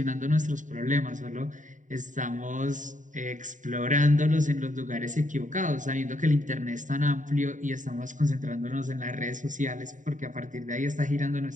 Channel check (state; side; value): late; left; 0.37 ms